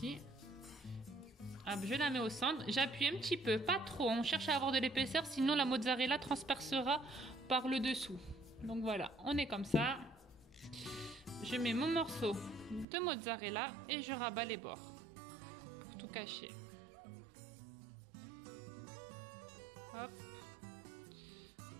Hop, je la mets au centre. J'appuie un petit peu, pas trop. On cherche à avoir de l'épaisseur, sinon la mozzarella transpercera par le dessous. Donc voilà, on est comme ça. Je mets mon morceau de mozzarella et je rabats les bords pour tout cacher. Hop.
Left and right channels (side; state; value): left; drops out; at 12.9 s